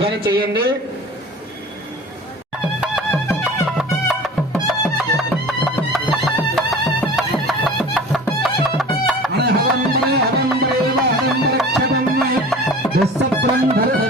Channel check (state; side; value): normal; both; correlation 0.41